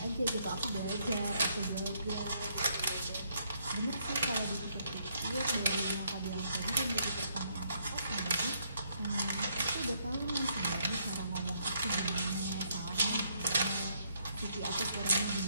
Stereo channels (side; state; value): both; inverted; correlation -0.72